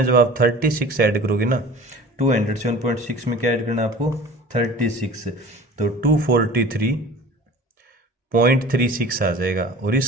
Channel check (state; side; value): normal; both; correlation 0.42